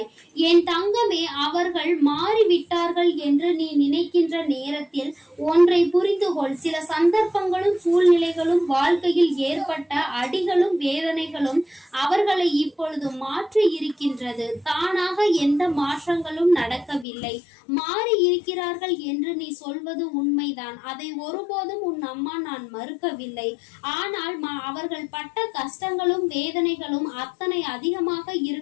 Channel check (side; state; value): right; drops out; at 17.1 s